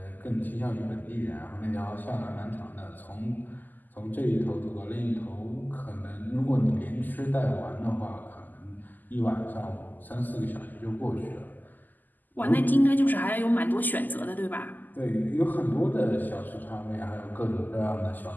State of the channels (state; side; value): late; right; 0.086 ms